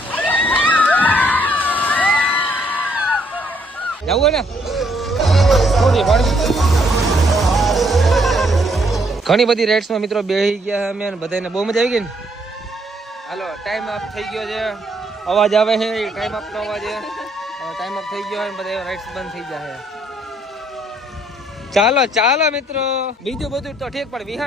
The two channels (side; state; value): both; normal; correlation 0.69